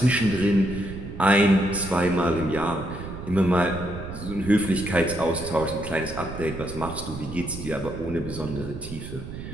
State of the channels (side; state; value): right; noise; rumble, 10 dB below the sound